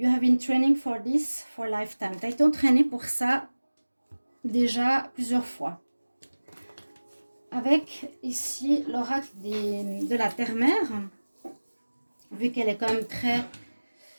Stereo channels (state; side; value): inverted; both; correlation -1.00